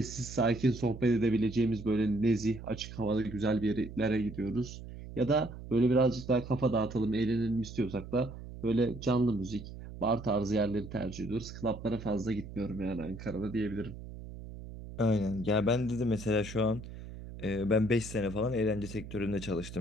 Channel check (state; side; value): noise; right; hum, 12 dB below the sound